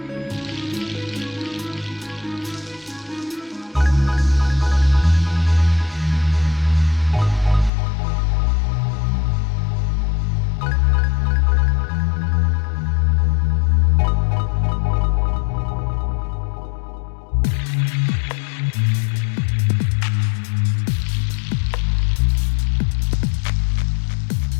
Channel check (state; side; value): drops out; right; at 7.7 s